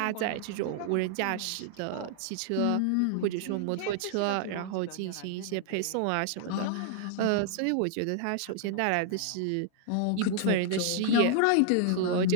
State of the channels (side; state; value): both; different; correlation 0.00